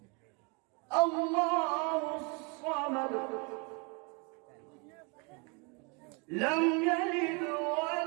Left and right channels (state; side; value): quieter; left; 32.5 dB